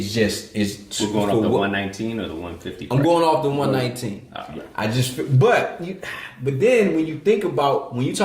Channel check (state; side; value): identical; both; correlation 1.00